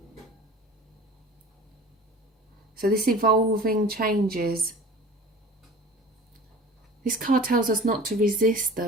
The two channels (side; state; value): both; normal; correlation 0.41